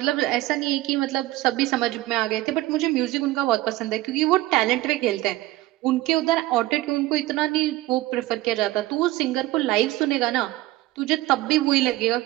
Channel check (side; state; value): left; quieter; 17.3 dB